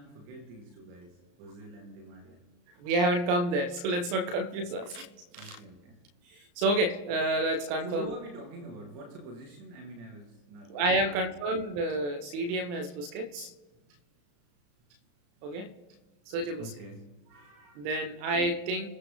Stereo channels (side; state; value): left; late; 34 ms